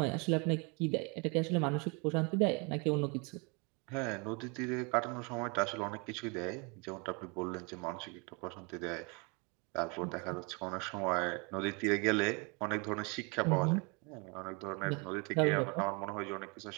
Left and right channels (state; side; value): quieter; left; 31.5 dB